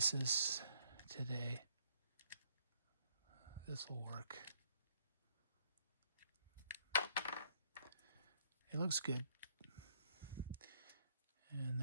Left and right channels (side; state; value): both; inverted; correlation -0.67